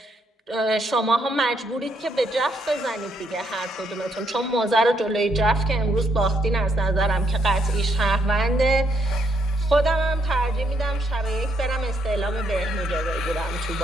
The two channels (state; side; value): normal; both; correlation 0.74